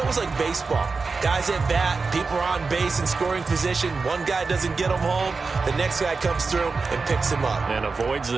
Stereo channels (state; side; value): quieter; left; 4.4 dB